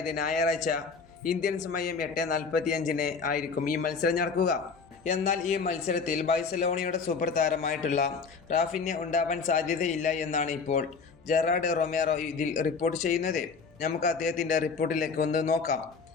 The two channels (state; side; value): quieter; right; 5.1 dB